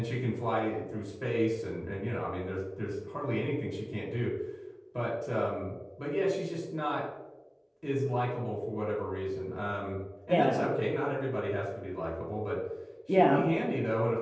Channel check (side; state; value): both; identical; correlation 1.00